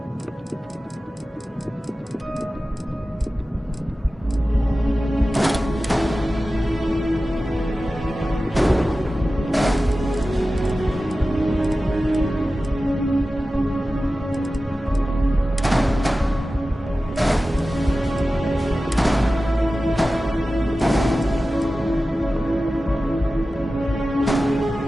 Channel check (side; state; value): both; normal; correlation 0.95